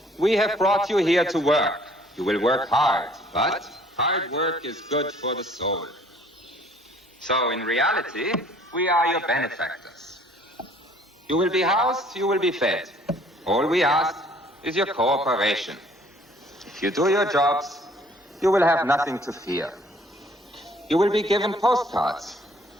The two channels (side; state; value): both; normal; correlation 0.58